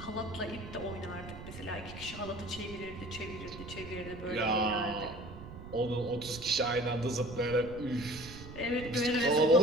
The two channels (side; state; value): right; noise; rumble, 12 dB below the sound